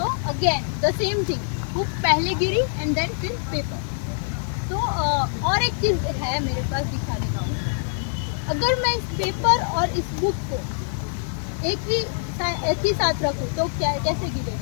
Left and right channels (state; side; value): silent; right; digital silence